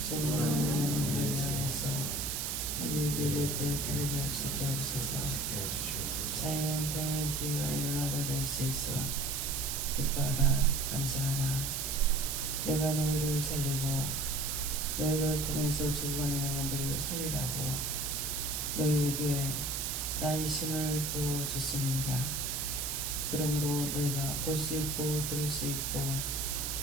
적어가는 영혼들을 위해서 우리에게 이를 때 바르게 할 수 있게 하옵소서. 자연은 뒤와 일어나를 낼 수 있어 기뻐하라. 감사하라. 내가 너희를 살리고 너희를 통해서 죽어가는 영혼들을 살리라고 너희에게 나의 힘을 부어줬습니다. 그러므로 너희가 볼 수 있고 들을 수 있고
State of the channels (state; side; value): noise; right; hiss, 2 dB below the sound